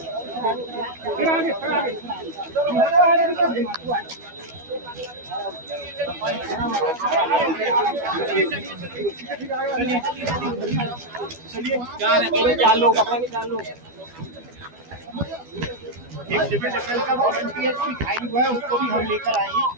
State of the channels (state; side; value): late; left; 12 ms